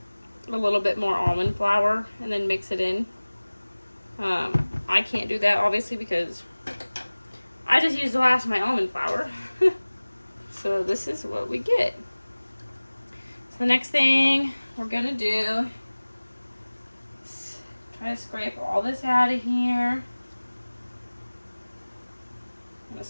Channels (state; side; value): inverted; both; correlation -1.00